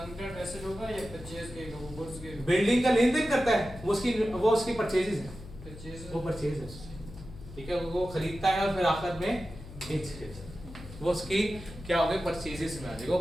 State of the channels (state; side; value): noise; left; hum, 15 dB below the sound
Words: करंट एसेट होगा या परचेज के वो गुड्स के? बिल्डिंग का लेन देन करता है वो उसकी परचेजेस है, परचेज वो परचेज है, ठीक है। वो खरीदता है और फिर आखिर में बेच देता है, वो उसकी क्या हो गई? परचेजेस में आ जाएगा, वो